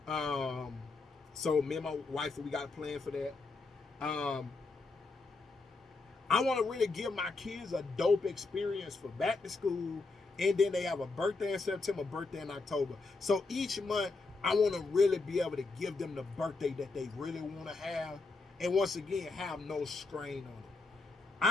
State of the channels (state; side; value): quieter; right; 3.8 dB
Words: So me and my wife, we got a plan for that. I want to really give my kids a dope experience for back to school, and then they have a birthday in September, birthday in October. So each month, I want to really be able to give them the birthday that they really want to have, and once again, have no strain on it.